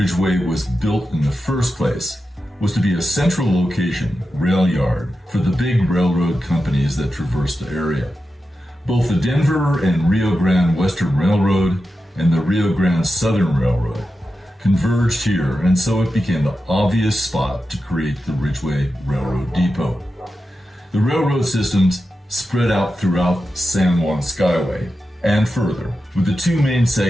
was built in the first place was to be a central location, rail yard, for the big railroad companies that traverse the area. Both the Denver and Rio Grande Western Railroad and the Rio Grande Southern Railroad converged here, and so it became the obvious spot to create the Ridgway Railroad Depot. The railroad systems spread out throughout San Juan Skyway and further, with the two main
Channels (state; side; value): normal; both; correlation 0.91